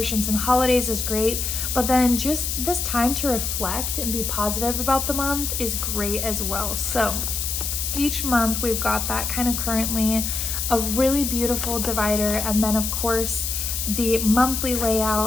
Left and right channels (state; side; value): noise; left; hiss, 2 dB below the sound